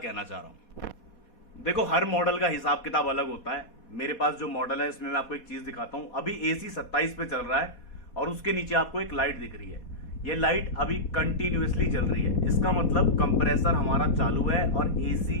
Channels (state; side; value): late; right; 4.2 ms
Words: चाह रहा हूँ। देखो, हर मॉडल का हिसाब किताब अलग होता है। मेरे पास जो मॉडल है इसमें मैं आपको एक चीज दिखाता हूँ। अभी एसी 27 पे चल रहा है और उसके नीचे आपको एक लाइट दिख रही है। ये लाइट अभी कंटिन्यूअसली जल रही है। इसका मतलब कंप्रेसर हमारा चालू है और